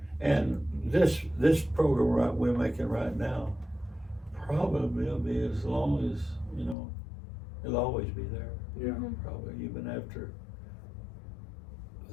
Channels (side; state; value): right; drops out; at 6.8 s